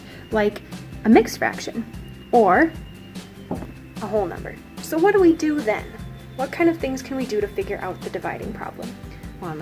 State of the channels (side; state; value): both; identical; correlation 1.00